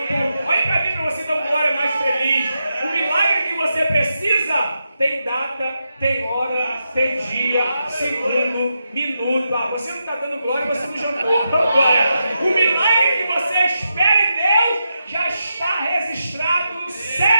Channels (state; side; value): inverted; both; correlation -0.86